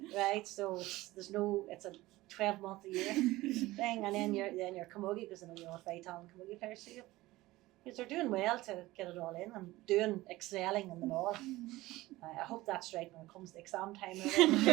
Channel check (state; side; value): quieter; left; 18.4 dB